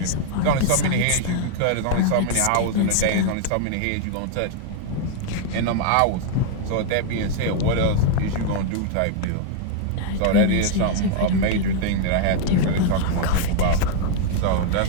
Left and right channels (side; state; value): both; different; correlation 0.00